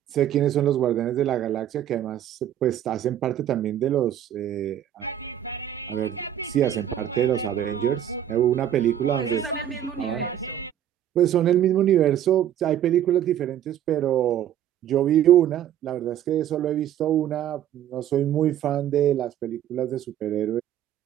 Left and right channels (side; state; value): left; quieter; 10.8 dB